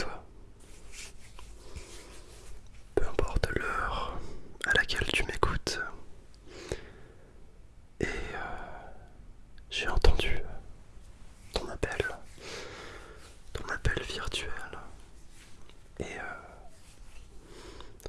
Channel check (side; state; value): both; identical; correlation 1.00